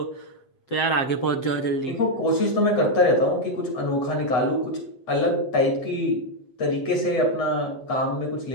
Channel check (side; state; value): right; late; 7.5 ms